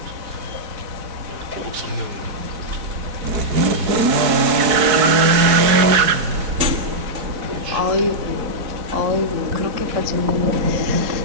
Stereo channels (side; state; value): left; late; 4.6 ms